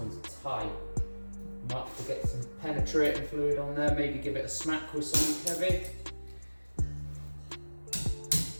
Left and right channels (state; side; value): inverted; both; correlation -1.00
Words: tight. Might have to get some penetrating fluid on there, maybe give it a smack with something heavy.